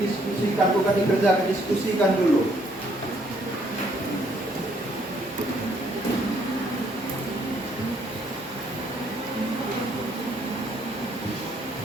bukan dikerjakan, diskusikan dulu.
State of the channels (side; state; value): both; normal; correlation 0.67